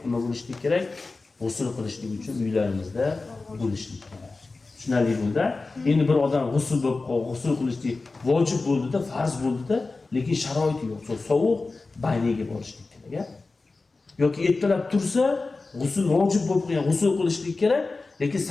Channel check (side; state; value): right; quieter; 3.7 dB